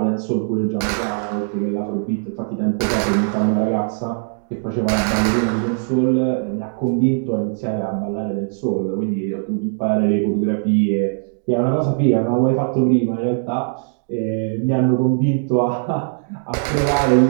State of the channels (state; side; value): silent; left; 66 dB below the other